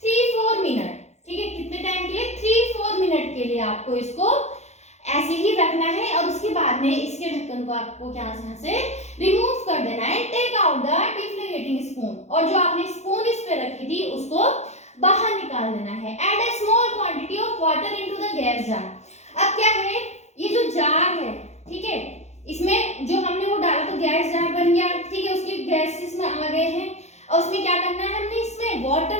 3-4 minute, ठीक है, कितने टाइम के लिए, 3-4 मिनट के लिए आपको इसको ऐसे ही रखना है। और उसके बाद में इसके ढक्कन को आपको यहाँ से रिमूव कर देना है। टेक आउट द डिफ्लेगेटिंग स्पून, और जो आपने स्पून इस पे रखी थी उसको बाहर निकाल देना है। Add a small quantity of water into the gas jar. अब क्या है, ये जो जार है, ठीक है, इसमें जो हमने वो डाला तो गैस जार बन गया, ठीक है, उसकी गैस इसमें आ गए हैं। और उसमें क्या करना है, हमने इसमें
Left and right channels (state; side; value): late; right; 0.32 ms